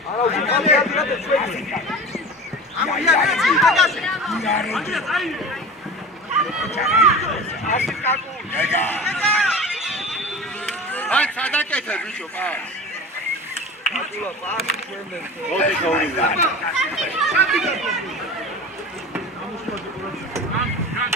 არა უკამი ადრე ჩვენი ამია დაგასე ასი კაკულ აი სადაკეთე ბიჭო პას აკულა პასი ჩვენდენ მოდი გაურიდე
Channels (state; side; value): normal; both; correlation 0.34